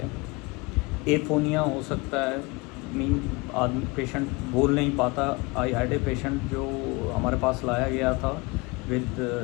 है. एफोनिया हो सकता है, मीन आदमी पेशेंट बोल नहीं पाता. आई हैड ए पेशेंट जो हमारे पास लाया गया था with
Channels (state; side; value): quieter; right; 25.4 dB